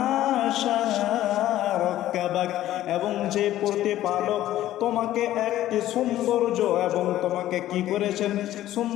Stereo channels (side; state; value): right; quieter; 13.7 dB